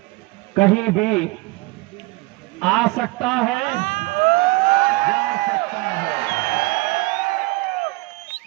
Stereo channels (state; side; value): quieter; left; 23.4 dB